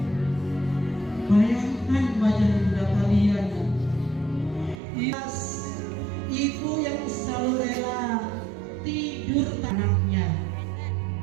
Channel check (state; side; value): drops out; left; at 4.8 s